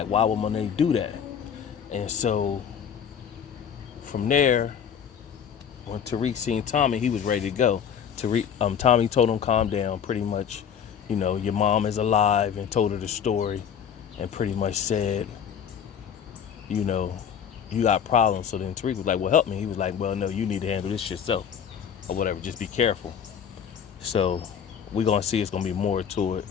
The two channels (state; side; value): quieter; right; 8.0 dB